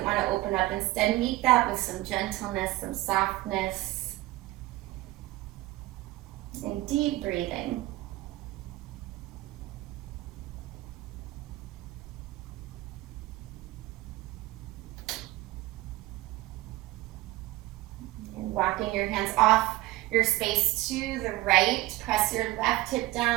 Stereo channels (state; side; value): quieter; left; 18.3 dB